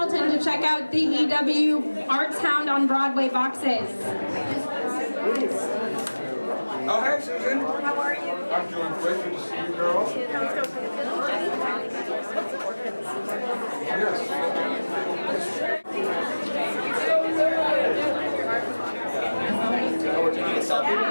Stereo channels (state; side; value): inverted; both; correlation -1.00